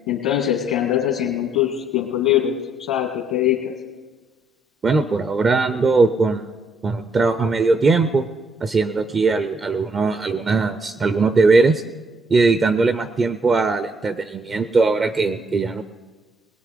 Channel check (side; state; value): both; normal; correlation 0.70